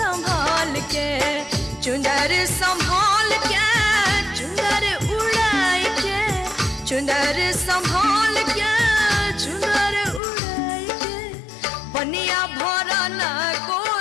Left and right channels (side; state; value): right; drops out; at 10.2 s